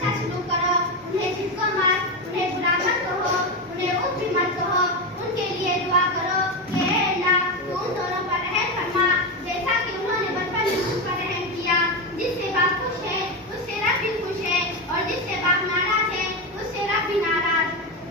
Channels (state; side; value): normal; both; correlation 0.14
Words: अच्छा सलूक करो, उन्हें झिटको मत, उन्हें बुरा मत कहो, उन्हें उफ भी मत कहो। उनके लिए दुआ करो कि हे अल्लाह तू उन दोनों पर रहम फरमा जैसा कि उन्होंने बचपन में मुझ पर रहम किया। जिससे बाप खुश है उससे रब भी खुश है और जिससे बाप नाराज है उससे रब भी नाराज।